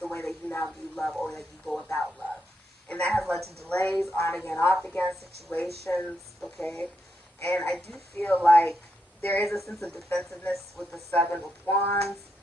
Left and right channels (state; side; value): normal; both; correlation 0.82